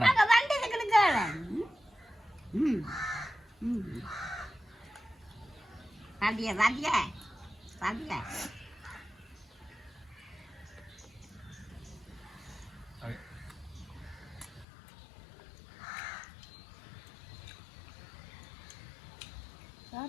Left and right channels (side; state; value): right; drops out; at 14.7 s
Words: அங்கே வந்தது கிடக்கால ம் ம் பாத்தியா பாத்தியா பாத்தியா